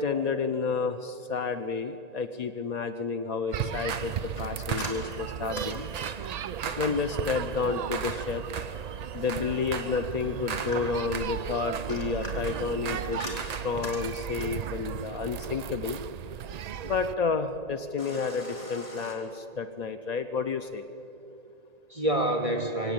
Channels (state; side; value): late; left; 1.8 ms